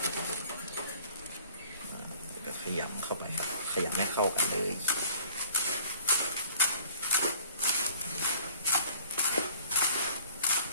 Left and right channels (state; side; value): inverted; both; correlation -0.52